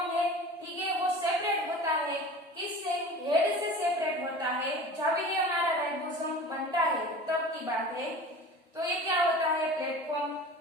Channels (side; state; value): both; normal; correlation 0.38